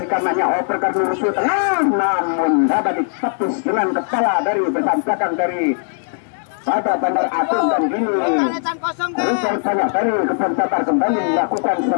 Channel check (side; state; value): right; silent; digital silence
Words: kanannya, operkan musuh tengah, namun dapat ditepis dengan kepala dari besan belakang dari pada Bandar Agung. Dan gini Richard banyak dari Kebun Damar kembali melakukan